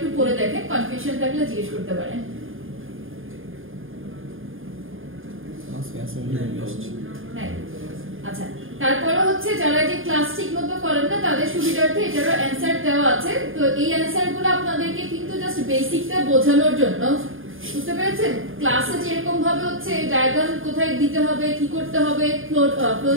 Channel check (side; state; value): left; late; 0.59 ms